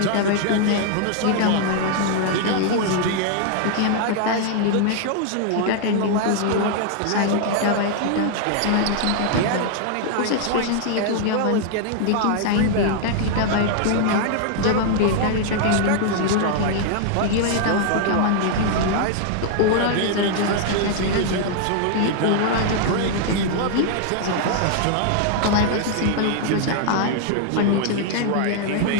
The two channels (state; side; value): different; both; correlation 0.00